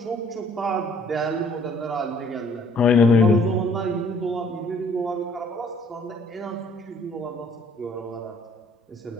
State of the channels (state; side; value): normal; both; correlation 0.59